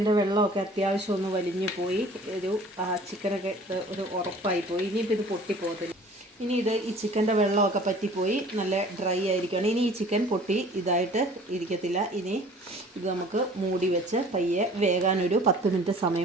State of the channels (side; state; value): both; normal; correlation 0.49